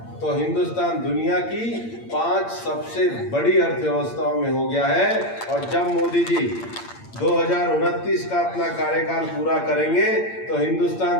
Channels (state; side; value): late; right; 8.8 ms